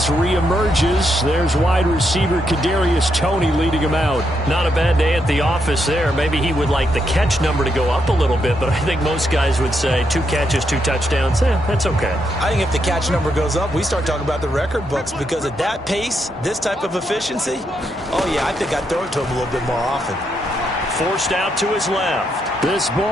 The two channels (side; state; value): both; normal; correlation 0.80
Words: reemerges, there's wide receiver Kadarius Toney leading him out. Not a bad day at the office there. Maybe he would like the catch number to go up a little bit, but I think most guys would say 2 catches, 2 touchdowns. That's okay. I think if the catch number goes up, we start talking about the record books, because at that pace, this type of efficiency, oh yeah, I think I'd throw it to him a little bit more often. Forced out to his left. This